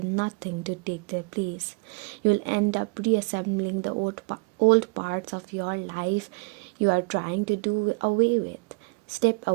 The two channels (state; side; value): quieter; left; 28.4 dB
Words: nothing to take their place. You will end up reassembling the old parts of your life you are trying to do away with. Step